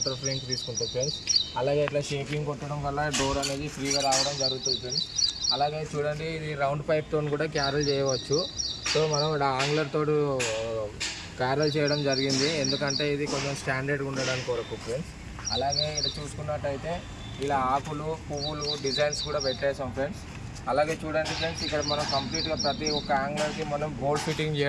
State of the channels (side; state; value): both; identical; correlation 1.00